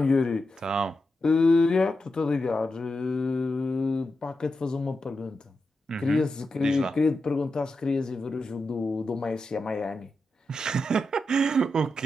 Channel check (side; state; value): both; normal; correlation 0.88